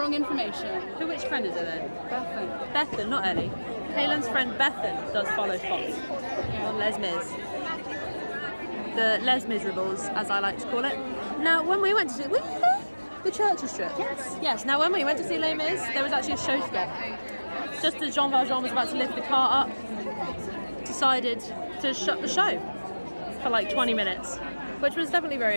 information. Which friend is it then? Bethan. Bethan, not Ellie. Kaylin's friend Bethan does follow spots on Les Mis. The Les Miserables, as I like to call it. Now, when we went to see, were you there? The Churchill strip? Yes. Yes, now when we went to see Les Mis, there was actually a show stop. Just as Jean Valjean was about to lift the car up, decided to shut the show for like 20 minutes, which was definitely very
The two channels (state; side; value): inverted; both; correlation -1.00